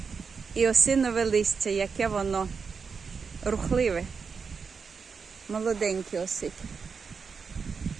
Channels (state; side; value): quieter; left; 5.5 dB